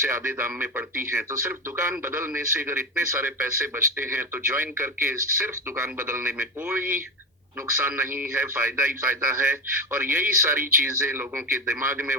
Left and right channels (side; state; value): both; normal; correlation 0.18